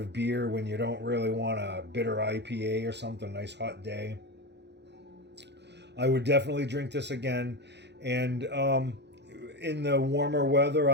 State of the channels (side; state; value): left; late; 0.50 ms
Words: beer when you don't really want a bitter IPA or something. Nice hot day. I would definitely drink this again, and in the warmer weather,